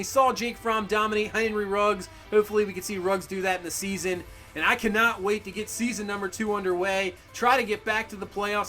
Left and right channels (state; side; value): identical; both; correlation 1.00